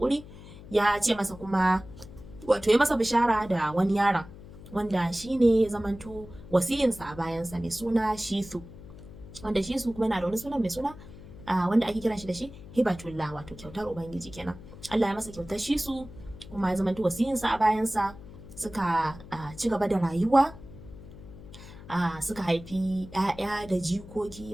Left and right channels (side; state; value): left; noise; hum, 17 dB below the sound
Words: ya ce masa kuma wato ya masa bishara da wani yaron wanda shi ne ya zamanto wasiyinsa a bayansa mai suna Shisu, wanda Shisu kuma yana da wani sunan mai suna wanda ake kiran shi da shi Hibatullah, wato kyautar Ubangiji kenan. Allah ya masa kyautar Shisu kuma ya zamanto wasiyinsa a bayansa, suka ci gaba da rayuwa, suka haifi 'ya'ya da jikoki